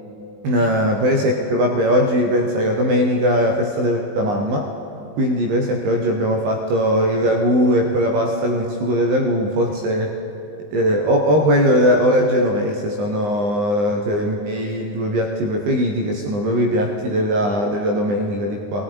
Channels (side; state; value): left; late; 19 ms